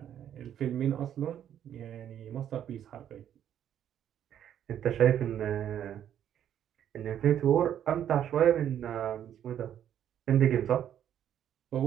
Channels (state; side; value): quieter; left; 10.1 dB